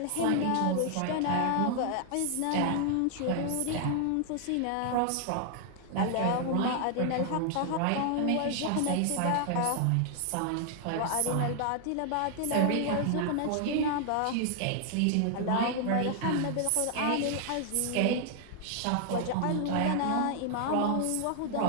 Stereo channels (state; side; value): different; both; correlation 0.00